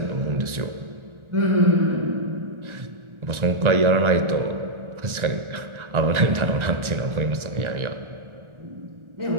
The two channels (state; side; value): late; left; 1.4 ms